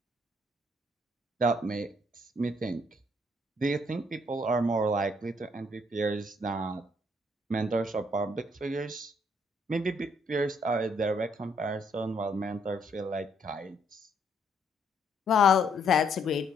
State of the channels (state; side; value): normal; both; correlation 0.69